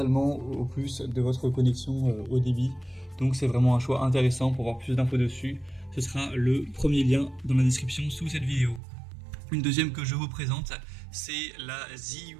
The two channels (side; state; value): left; drops out; at 8.8 s